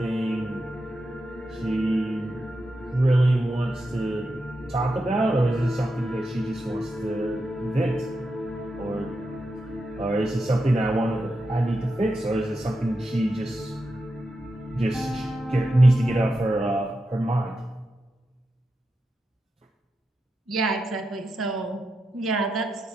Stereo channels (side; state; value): both; normal; correlation 0.88